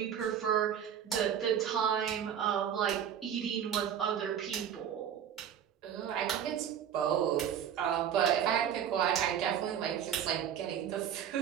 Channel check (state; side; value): quieter; left; 9.1 dB